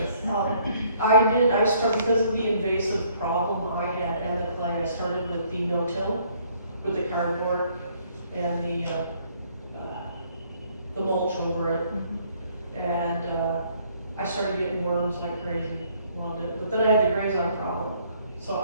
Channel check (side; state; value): both; inverted; correlation -0.63